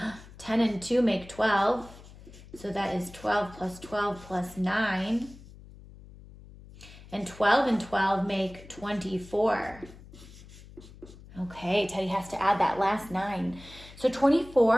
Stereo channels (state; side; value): noise; left; hum, 19 dB below the sound